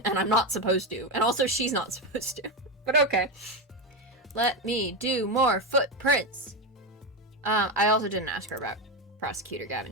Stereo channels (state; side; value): normal; both; correlation 0.12